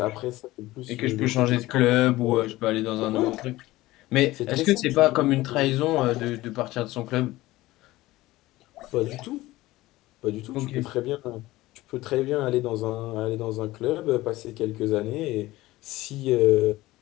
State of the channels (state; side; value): quieter; right; 17.9 dB